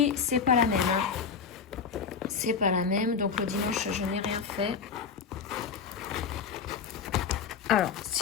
c'est pas la même. C'est pas la même. Donc, le dimanche, je n'ai rien fait. Alors,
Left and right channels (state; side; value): quieter; right; 6.0 dB